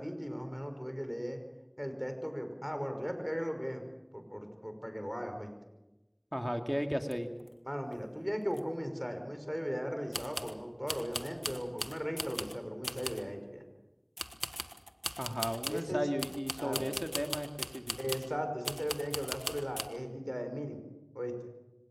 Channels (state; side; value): identical; both; correlation 1.00